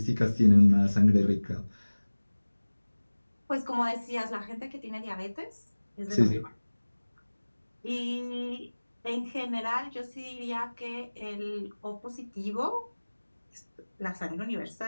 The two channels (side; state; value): both; inverted; correlation -1.00